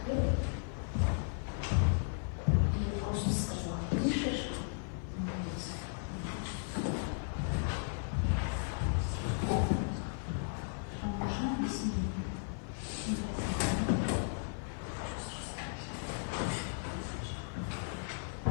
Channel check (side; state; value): right; silent; digital silence